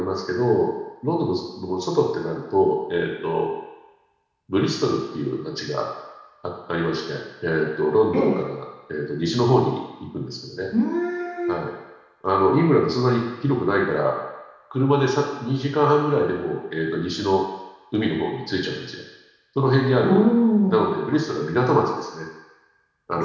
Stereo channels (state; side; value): identical; both; correlation 1.00